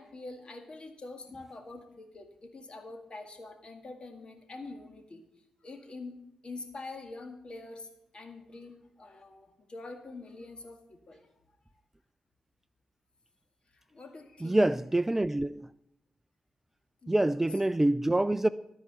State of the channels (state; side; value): normal; both; correlation 0.98